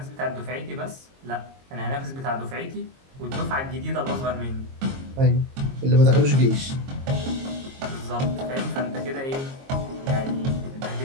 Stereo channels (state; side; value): late; left; 22 ms